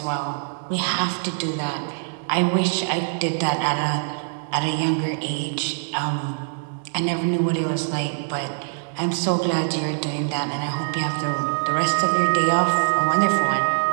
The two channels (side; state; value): left; silent; digital silence